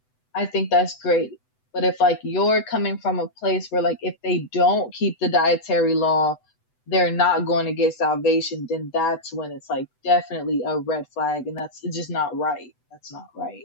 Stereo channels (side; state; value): right; late; 8.0 ms